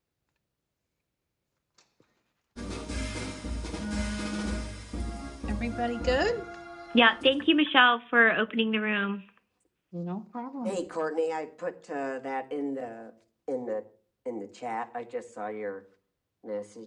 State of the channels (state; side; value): identical; both; correlation 1.00